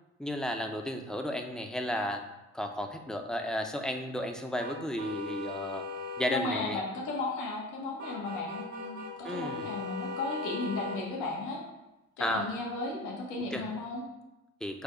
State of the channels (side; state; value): both; normal; correlation 0.42